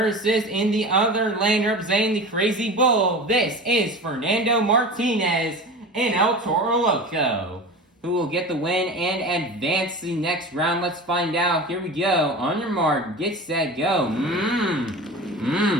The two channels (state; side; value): normal; both; correlation 0.33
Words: in the other lane, representing the Crazy Bull, this is Fernando Martinez and El Toro Loco. Who will get the win and advance to the next round? Let's find out. Here we go. On your mark, get set, go.